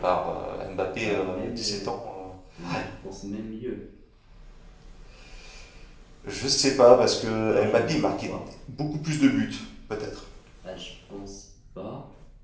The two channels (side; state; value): both; identical; correlation 1.00